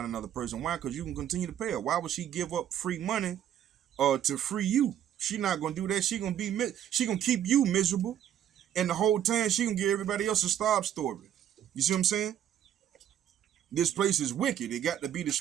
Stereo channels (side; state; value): left; quieter; 10.4 dB